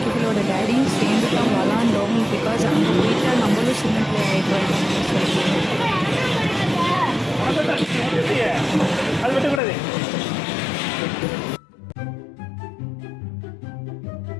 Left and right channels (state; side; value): drops out; right; at 9.6 s